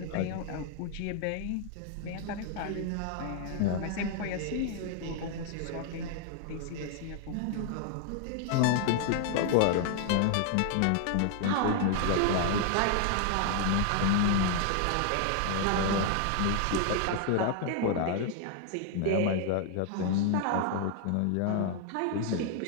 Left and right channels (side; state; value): both; different; correlation 0.00